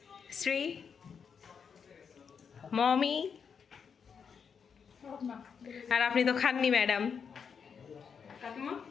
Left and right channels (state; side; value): quieter; right; 6.5 dB